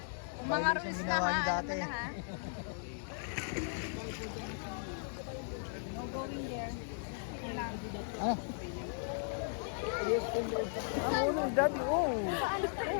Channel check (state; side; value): silent; right; digital silence